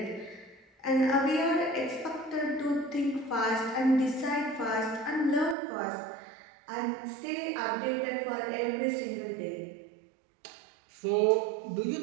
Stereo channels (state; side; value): drops out; left; at 5.6 s